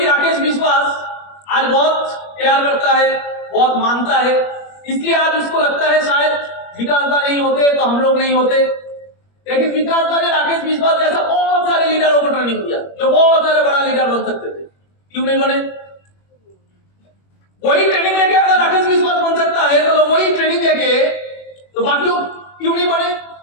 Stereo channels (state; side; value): late; right; 21 ms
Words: राकेश विश्वास आज बहुत प्यार करता है, बहुत मानता है, इसलिए आज उसको लगता है शायद विकास दा नहीं होते तो हम लोग नहीं होते। लेकिन विकास दा ने राकेश विश्वास जैसा बहुत सारे लीडरों को ट्रेनिंग दिया जो बहुत सारे बड़ा लीडर बन सकते थे, क्यों नहीं बने? वही ट्रेनिंग लेके अगर राकेश विश्वास बन सकता है तो लोग वही ट्रेनिंग लेके तो बाकी लोग क्यों नहीं बने?